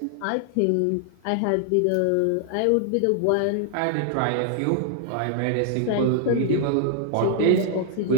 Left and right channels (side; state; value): both; different; correlation -0.01